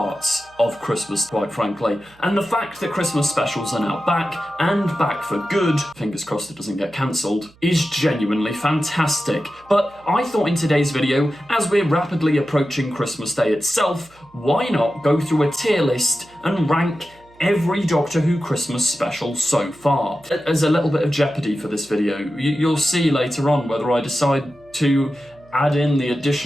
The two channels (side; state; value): right; noise; hum, 28 dB below the sound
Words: of Christmas, quite frankly. And the fact that Christmas specials are now back, and back for good, fingers crossed it doesn't get cancelled, is genuinely fantastic. But I thought in today's video, as we're rapidly approaching Christmas Day itself, why not go through a tier list and rank every Doctor Who Christmas special so far. As a little bit of jeopardy for this video, you'll see later on whether I decide to add in the